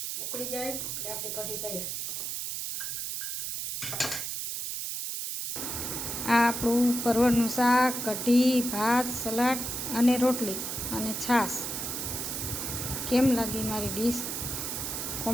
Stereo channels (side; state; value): right; noise; hiss, 4 dB below the sound